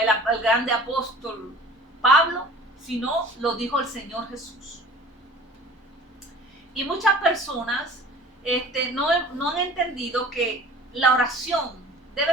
grande apóstol Pablo, sino lo dijo el Señor Jesús. Y muchas personas no han entendido que la oración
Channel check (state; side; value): normal; both; correlation 0.45